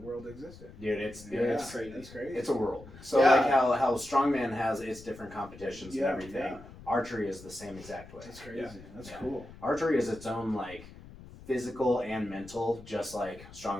world existed. Dude, it's crazy. That's crazy. It's a world. So like how strongman has its different competitions and everything. Yeah. Archery is the same exact way. That's crazy. Yeah. That's cool. Archery is its own like physical and mental, just like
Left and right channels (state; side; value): noise; left; rumble, 18 dB below the sound